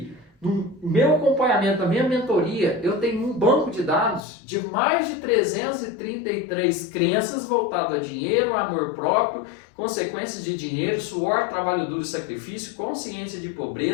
no meu acompanhamento, na minha mentoria, eu tenho um banco de dados de mais de 333 crenças voltadas a dinheiro, amor próprio, consequências de dinheiro, suor, trabalho duro e sacrifício, consciência de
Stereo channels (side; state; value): right; drops out; at 4.2 s